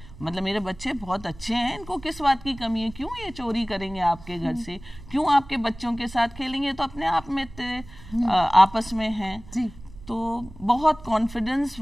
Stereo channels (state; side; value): noise; right; rumble, 18 dB below the sound